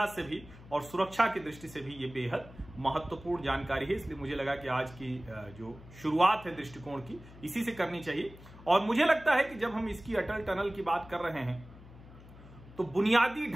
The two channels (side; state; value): left; noise; hum, 19 dB below the sound